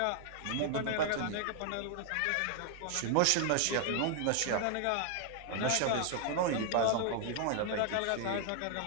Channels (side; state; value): both; different; correlation 0.00